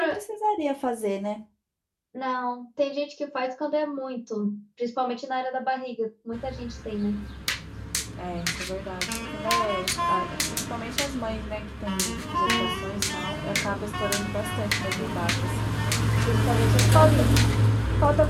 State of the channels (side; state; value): both; identical; correlation 1.00